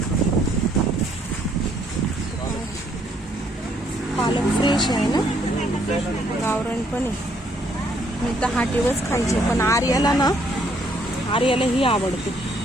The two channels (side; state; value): both; normal; correlation 0.68